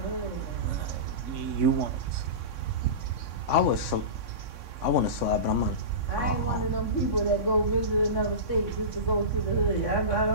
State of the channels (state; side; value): late; right; 3.6 ms